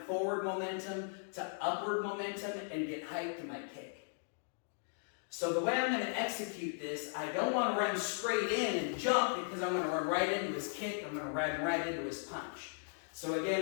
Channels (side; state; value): right; silent; digital silence